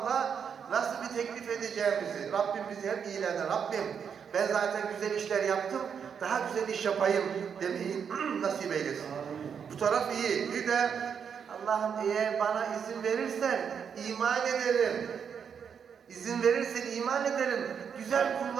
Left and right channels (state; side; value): quieter; left; 7.2 dB